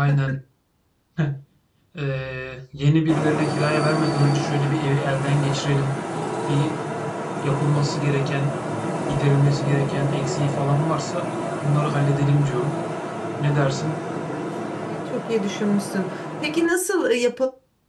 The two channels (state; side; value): identical; both; correlation 1.00